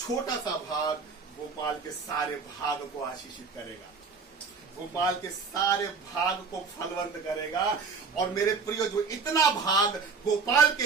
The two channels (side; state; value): left; quieter; 5.1 dB